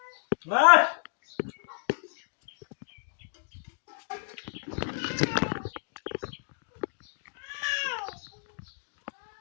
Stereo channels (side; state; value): right; silent; digital silence